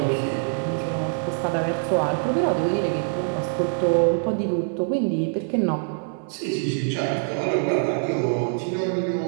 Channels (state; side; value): silent; left; digital silence